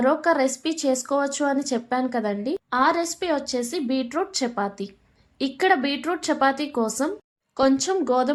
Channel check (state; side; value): identical; both; correlation 1.00